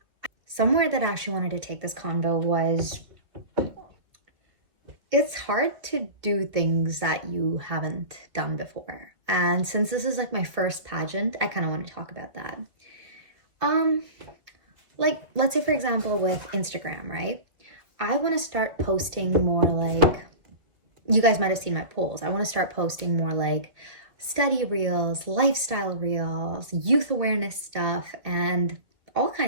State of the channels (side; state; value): left; late; 2.1 ms